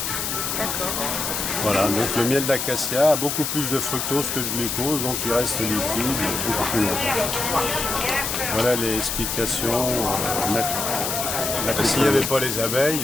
D'accord. Voilà, donc le miel d'acacia a beaucoup plus de fructose que de glucose, donc il reste liquide beaucoup plus longtemps. Voilà les explications naturelles. S'il n'y avait pas les abeilles, il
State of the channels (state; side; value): noise; left; hiss, 2 dB below the sound